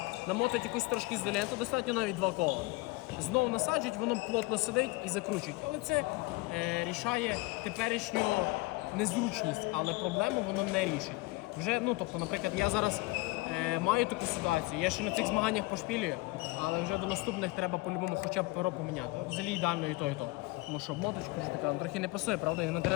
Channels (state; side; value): quieter; right; 22.2 dB